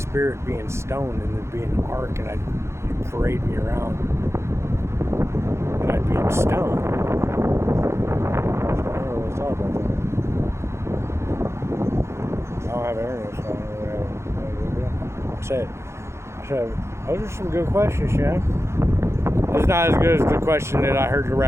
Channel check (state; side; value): late; left; 0.13 ms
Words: be in stone and there'd be an ark and I'd parade me around and I'd be in stone? I don't really thought about that. I don't have internet, so I don't really have. I said, those are some good questions, Shem. It's not as good as the question that I heard the